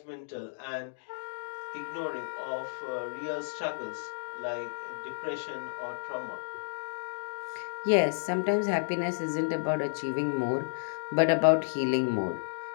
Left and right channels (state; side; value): silent; right; digital silence